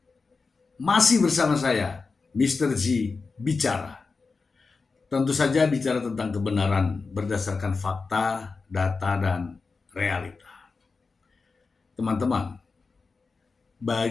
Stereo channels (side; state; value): right; quieter; 4.4 dB